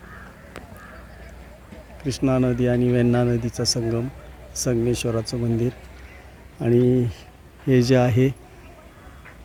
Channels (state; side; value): identical; both; correlation 1.00